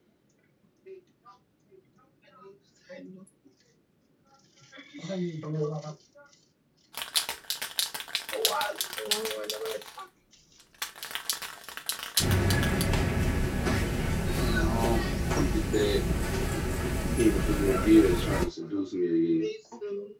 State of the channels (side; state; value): both; identical; correlation 1.00